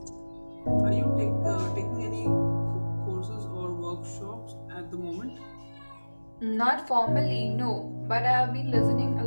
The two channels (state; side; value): inverted; both; correlation -1.00